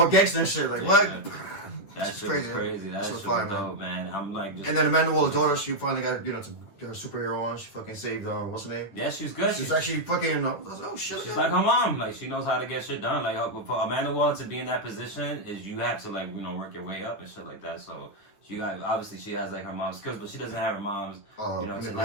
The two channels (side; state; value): right; late; 10 ms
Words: gangster and shit. Like what? Yeah. That shit was crazy. That shit was fire, dope, man. I'm like. And then Amanda Waller's daughter, she finally got her superhero on. She fucking saved what's her name? Yeah, she's good. She's actually fucking. Oh shit. She's like her mom. Like she knows how to get shit done. Like for Amanda Waller to be in that position is you have to work your way up and shit like that. So obviously she has like her mom's skills, but she doesn't have her mom's manipulation